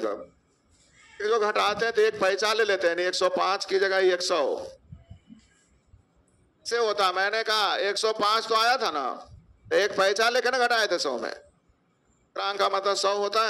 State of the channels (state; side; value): identical; both; correlation 1.00